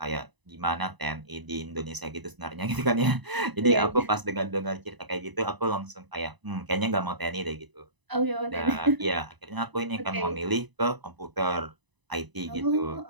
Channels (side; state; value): left; late; 1.0 ms